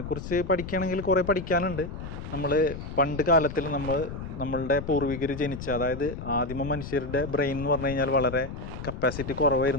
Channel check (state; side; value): noise; left; rumble, 8 dB below the sound